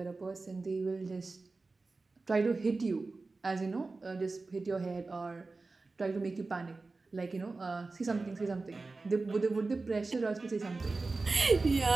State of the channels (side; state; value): left; quieter; 3.7 dB